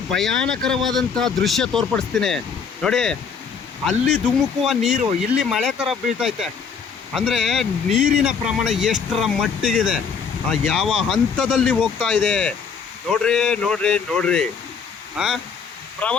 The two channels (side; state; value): right; quieter; 6.1 dB